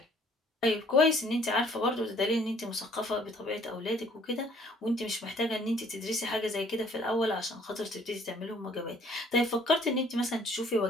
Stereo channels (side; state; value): both; normal; correlation 0.59